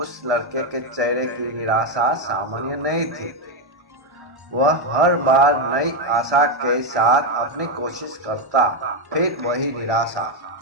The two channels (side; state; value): left; late; 1.6 ms